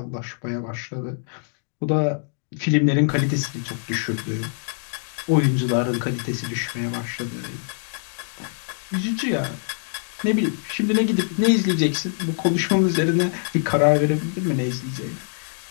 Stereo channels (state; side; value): silent; right; digital silence